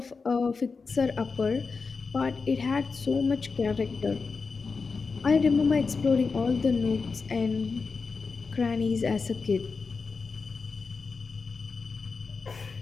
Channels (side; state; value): right; quieter; 4.7 dB